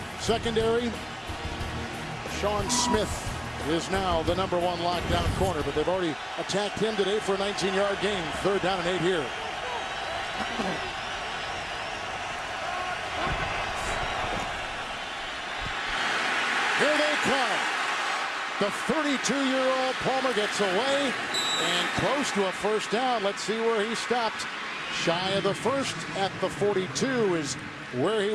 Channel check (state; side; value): identical; both; correlation 1.00